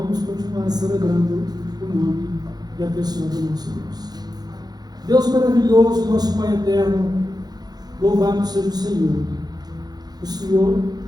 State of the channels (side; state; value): left; late; 0.19 ms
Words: continuar celebrando o nome e a pessoa do nosso Deus. Deus maravilhoso, nosso Pai eterno, louvado seja o Senhor. O Senhor